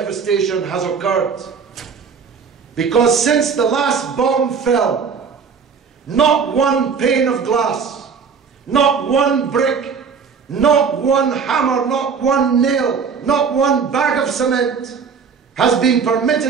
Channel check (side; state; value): left; quieter; 5.9 dB